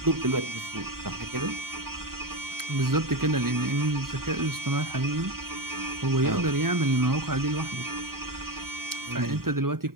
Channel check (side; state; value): left; late; 0.93 ms